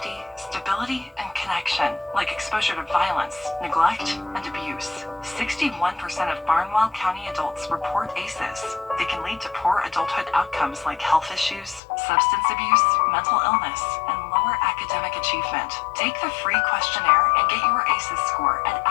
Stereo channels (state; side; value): drops out; right; at 11.8 s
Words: stability, and connection, like exposure to violence, neglect, and abuse. 61% of Barnwell County adults report ACEs. They can lead to poor adulthood outcomes like health issues, substance abuse, mental illness, and lower academic achievement. Take the free questionnaire and get your ACEs score at